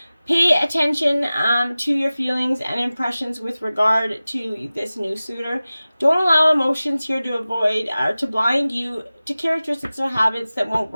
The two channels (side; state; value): both; inverted; correlation -0.97